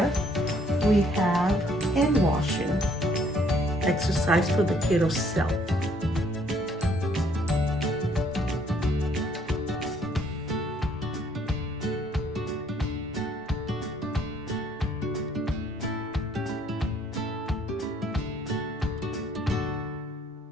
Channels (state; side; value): normal; both; correlation 0.64